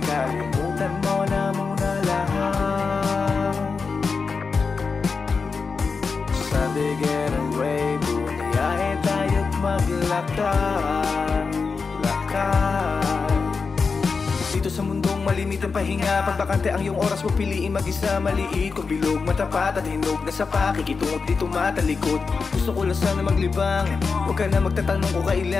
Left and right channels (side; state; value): right; quieter; 4.9 dB